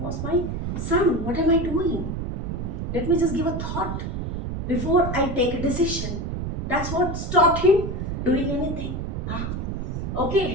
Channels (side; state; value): right; noise; rumble, 3 dB below the sound